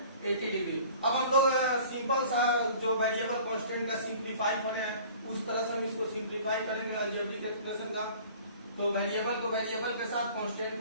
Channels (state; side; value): inverted; both; correlation -0.48